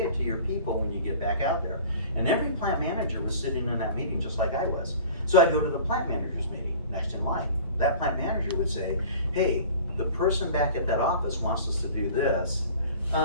it to your people when you get back out there. And every plant manager was sitting in that meeting just like I was. So I'd go to the plant manager's meeting next in line. That plant manager would say, hey, the person back at that office wants us to do this.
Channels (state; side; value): inverted; both; correlation -0.42